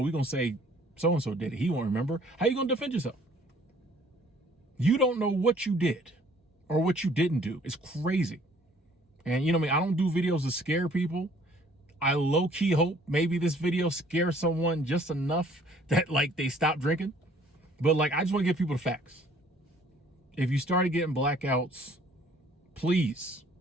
we're going to say so-and-so did it. He won't remember. How you going to defend yourself? You don't know what you did or what you didn't do. It's crazy. And you know me, I don't do videos to scare people. I low-key hope maybe this video scares someone just enough that like they stop drinking. But like, I just want to give people the facts. If you started getting blackouts, please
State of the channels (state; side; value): normal; both; correlation 0.58